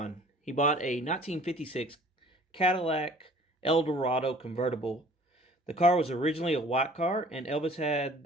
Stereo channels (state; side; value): normal; both; correlation 0.51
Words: He bought a 1956 Cadillac Eldorado convertible. The car was originally a white car, and Elvis had